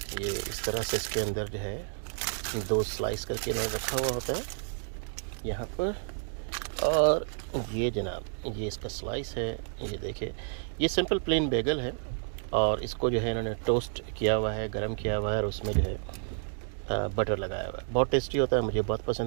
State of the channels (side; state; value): left; silent; digital silence